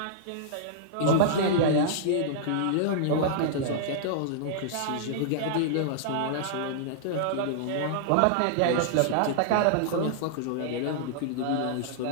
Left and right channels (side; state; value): both; different; correlation -0.01